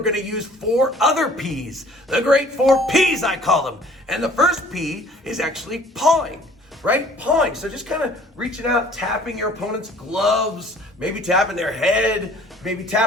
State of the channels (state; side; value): normal; both; correlation 0.53